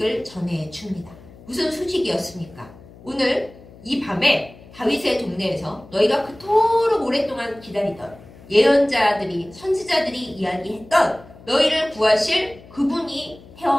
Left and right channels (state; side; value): noise; left; hum, 21 dB below the sound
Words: 전해줍니다. 무슨 소식이었습니까? 오늘 이 밤에 다윗의 동네에서 너희가 그토록 오랫동안 기다리던 예언자들이 선지자들이 이야기했던 너희를 구하실 그분이